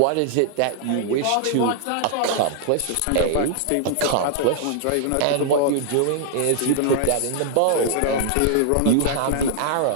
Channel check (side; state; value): both; different; correlation -0.01